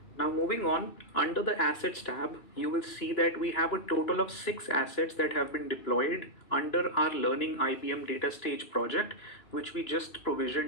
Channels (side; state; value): right; late; 2.9 ms